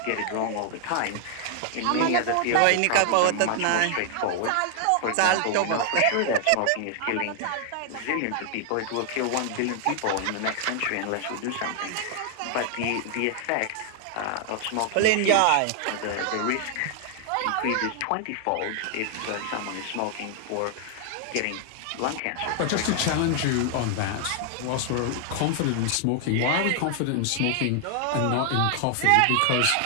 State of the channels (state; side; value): different; both; correlation 0.00